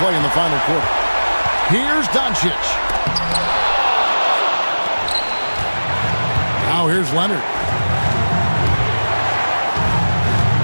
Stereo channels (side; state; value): both; inverted; correlation -1.00